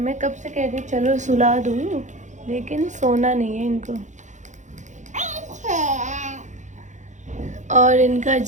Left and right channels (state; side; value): late; left; 0.35 ms